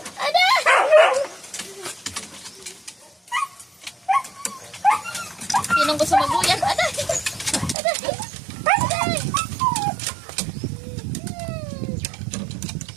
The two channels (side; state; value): left; drops out; at 7.8 s